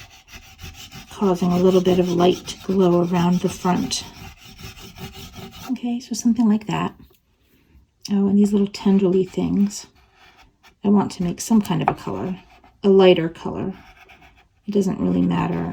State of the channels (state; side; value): identical; both; correlation 1.00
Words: causing a little bit of light to glow around the front. Okay, so something like that. Oh, and these little tendrily things. I want to make some kind of a color, a lighter color. It doesn't really